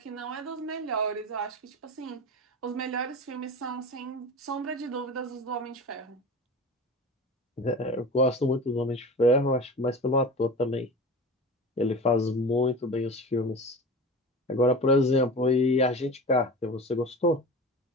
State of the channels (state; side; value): normal; both; correlation 0.33